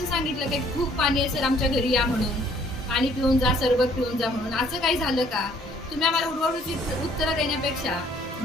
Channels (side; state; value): both; normal; correlation 0.61